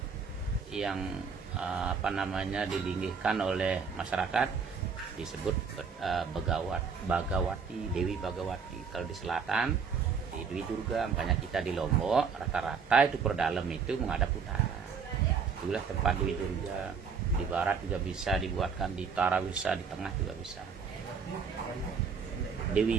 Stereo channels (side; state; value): left; quieter; 5.9 dB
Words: yang dilinggihkan oleh masyarakat disebut Bagawati, Dewi Bagawati. Kalau di selatan di Dewi Durga, makanya kita di Lombok rata-rata itu perdalam itu menghadap utara. Itulah tempat Dewi Durga. Di barat juga bisa dibuatkan, di utara bisa, di tengah juga bisa.